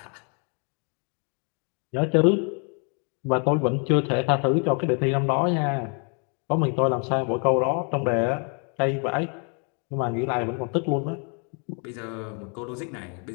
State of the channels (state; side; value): quieter; right; 37.6 dB